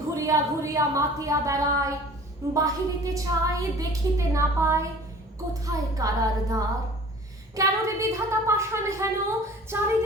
ঘুরিয়া ঘুরিয়া মাতিয়া বেড়ায়, বাহিরিতে চাই দেখিতে না পায়, কোথায় কারার দ্বার। কেন রে বিধাতা পাষাণ হেন,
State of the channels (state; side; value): normal; both; correlation 0.45